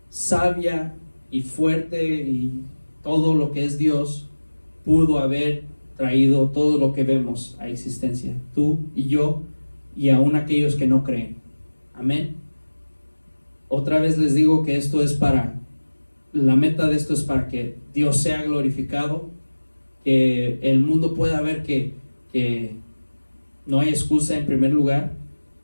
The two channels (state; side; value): inverted; both; correlation -1.00